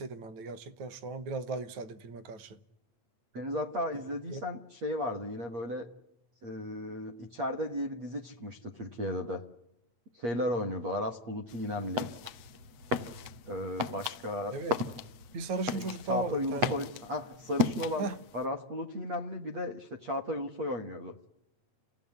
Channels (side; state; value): left; late; 8.1 ms